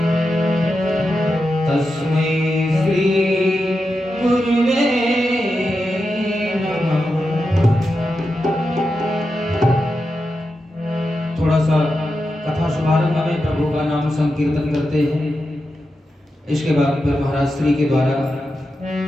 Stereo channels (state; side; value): normal; both; correlation 0.89